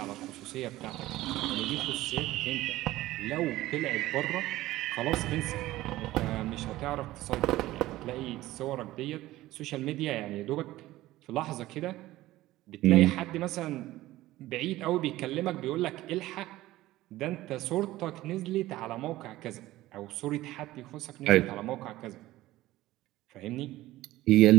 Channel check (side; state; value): left; quieter; 16.6 dB